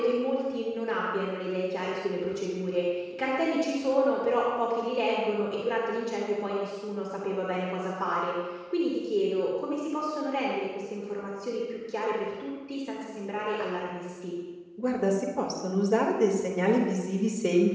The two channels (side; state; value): both; identical; correlation 1.00